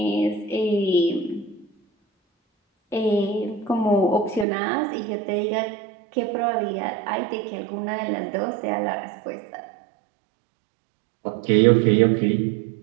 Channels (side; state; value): left; drops out; at 4.5 s